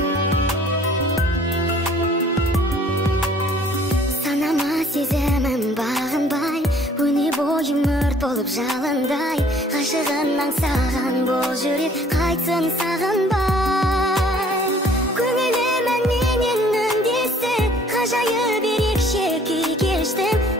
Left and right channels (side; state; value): both; normal; correlation 0.56